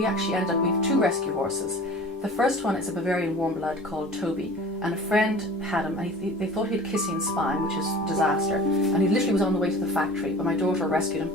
actually ended up, we have 2 rescue horses. The first one is a Bavarian warm blood called Toby. And a friend had him, and they thought he had kissing spine, which is a disaster. And he literally was on the way to the factory, but my daughter rescued him,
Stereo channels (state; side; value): normal; both; correlation 0.41